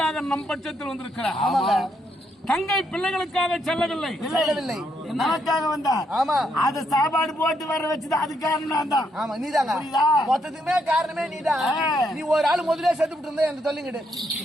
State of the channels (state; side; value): normal; both; correlation 0.76